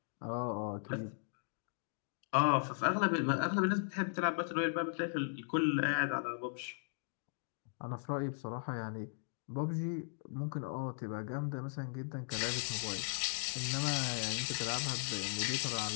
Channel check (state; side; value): silent; right; digital silence